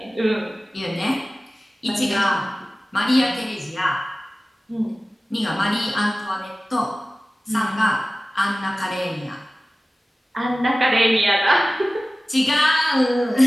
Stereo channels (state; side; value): normal; both; correlation 0.97